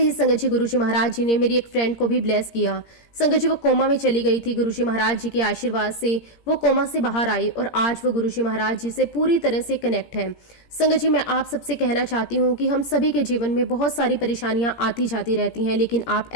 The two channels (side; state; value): right; late; 17 ms